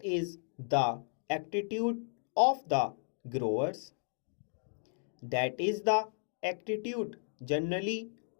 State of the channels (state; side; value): silent; right; 55 dB below the other